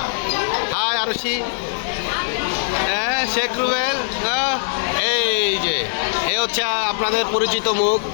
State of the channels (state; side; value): silent; right; digital silence